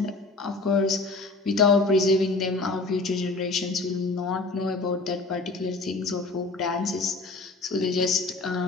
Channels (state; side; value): quieter; right; 3.4 dB